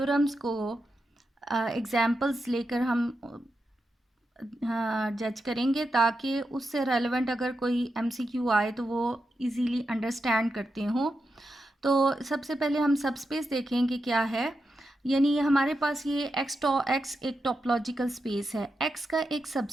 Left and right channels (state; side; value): normal; both; correlation 0.87